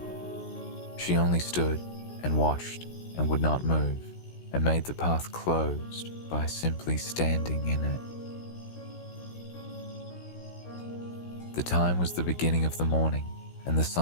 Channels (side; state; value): right; late; 16 ms